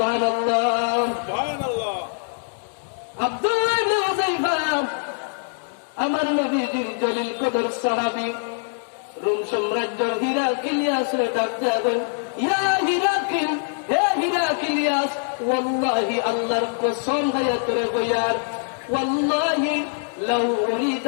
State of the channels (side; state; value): right; silent; 63 dB below the other